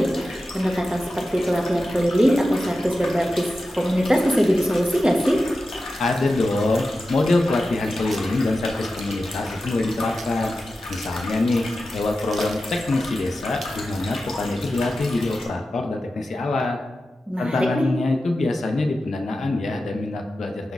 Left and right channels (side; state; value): both; normal; correlation 0.92